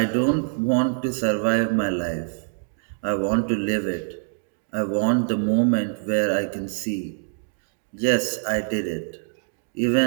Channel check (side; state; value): left; silent; digital silence